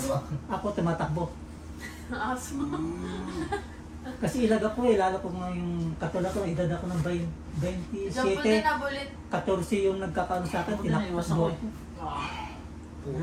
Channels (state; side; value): identical; both; correlation 1.00